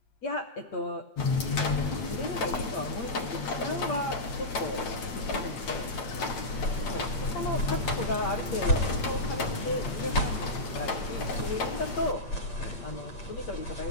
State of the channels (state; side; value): late; right; 8.9 ms